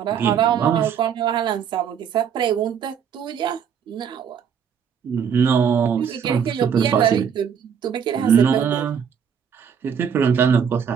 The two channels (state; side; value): quieter; left; 7.6 dB